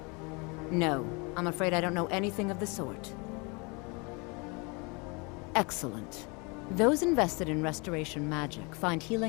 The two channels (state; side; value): quieter; right; 30.1 dB